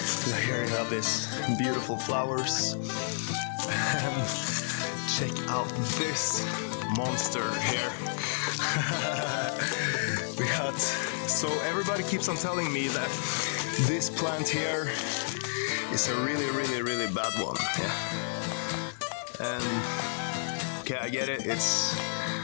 here you have this beautiful flowers. And check out this monster here. We got, so everybody keeps on telling me that this plant here is a really bad one. Yeah. And okay, I get it. It's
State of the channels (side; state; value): right; silent; 58 dB below the other